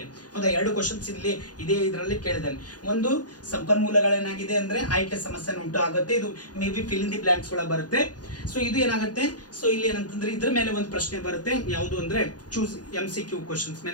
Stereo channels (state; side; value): late; right; 0.69 ms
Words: ಹೌದಾ, 2 ಕ್ವಶನ್ಸ್ ಇಲ್ಲಿ ಇದರಲ್ಲಿ ಕೇಳಿದ್ದಾನೆ. ಒಂದು ಸಂಪನ್ಮೂಲಗಳೇನಾಗಿದೆ ಅಂದ್ರೆ ಆಯ್ಕೆ ಸಮಸ್ಯೆನ ಉಂಟು ಆಗುತ್ತೆ. ಇದು may be fill in the blanks ಒಳಗೆ ಬರುತ್ತೆ. ಸೊ ಇದು ಏನಾಗುತ್ತೆ, ಸೊ ಇಲ್ಲಿ ಏನಂತಂದ್ರೆ ಇದ್ರ ಮೇಲೆ ಒಂದು ಪ್ರಶ್ನೆ ಬರುತ್ತೆ. ಯಾವುದು ಅಂದ್ರೆ ಚೂಸ್ MCQ ಕ್ವಶನ್ಸ್